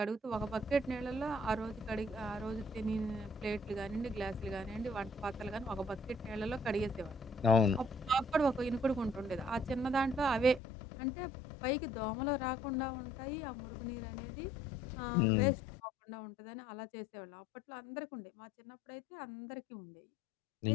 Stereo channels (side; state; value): right; drops out; at 10.6 s